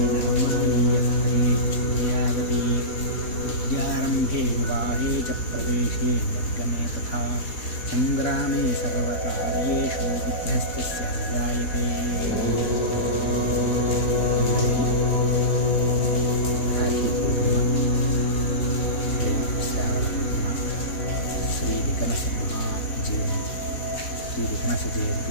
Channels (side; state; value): right; late; 4.2 ms